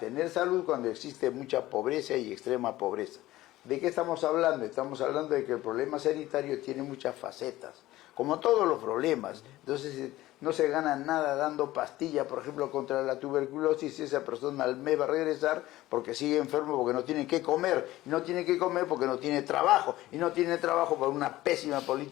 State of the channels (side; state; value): right; quieter; 16.4 dB